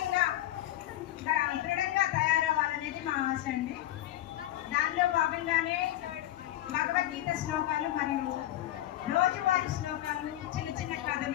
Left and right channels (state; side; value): quieter; right; 14.1 dB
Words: దృఢంగా తయారవ్వాలనేది మా ఆశ అండి. దానిలో భాగంగానే భగవద్గీత శ్లోకాలు మరియు రోజువారీ శ్లోకాలు, చిన్న చిన్న